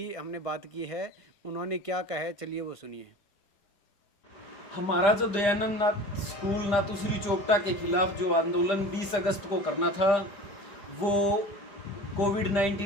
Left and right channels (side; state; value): right; late; 5.0 ms